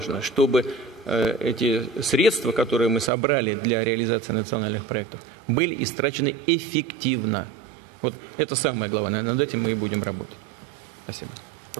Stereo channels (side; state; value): left; drops out; at 3.1 s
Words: чтобы эти средства, которые мы собрали для реализации национальных проектов, были истрачены эффективно. Вот это самое главное, над этим мы и будем работать. Спасибо.